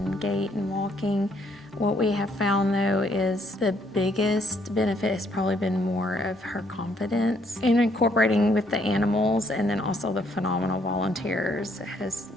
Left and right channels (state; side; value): normal; both; correlation 0.69